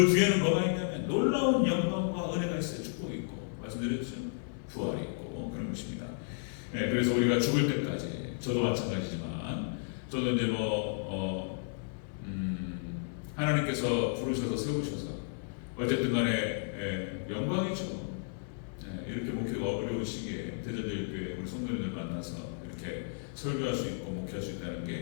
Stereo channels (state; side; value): silent; right; 56 dB below the other